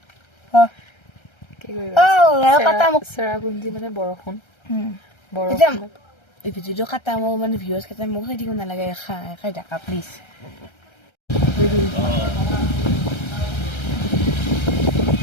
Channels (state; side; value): late; right; 1.3 ms